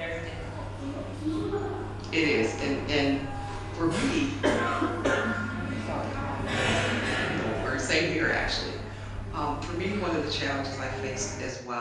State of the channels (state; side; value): identical; both; correlation 1.00